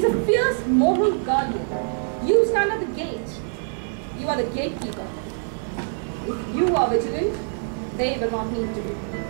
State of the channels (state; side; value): silent; left; digital silence